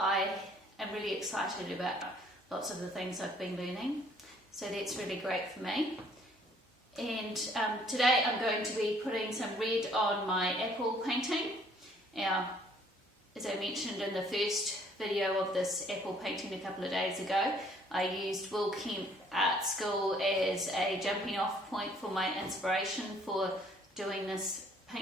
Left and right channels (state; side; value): normal; both; correlation 0.60